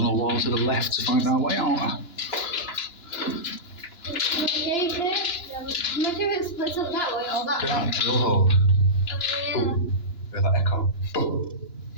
wall to the left to find our way out. Okay, there. Imagine if it splits up that way or that way. Yeah, drill hole. Oh, yeah. Boom. Hear that echo? Boom.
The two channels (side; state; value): right; late; 2.9 ms